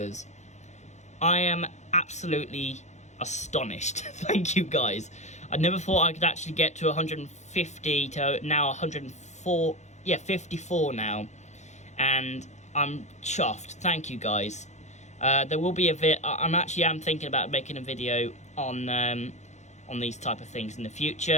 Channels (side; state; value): right; late; 0.33 ms